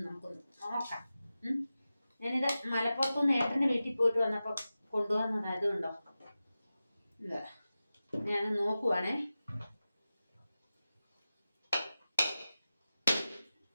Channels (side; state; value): both; inverted; correlation -0.94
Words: നമുക്കൊന്ന് നോക്കാം. ഞാനിത് മലപ്പുറത്തുനിന്ന് ഏട്ടൻ്റെ വീട്ടിൽ പോയിട്ട് വന്നപ്പോൾ കൊണ്ടുവന്നതായതുകൊണ്ടോ ഇല്ല, ഞാൻ നോക്കുവാണേ.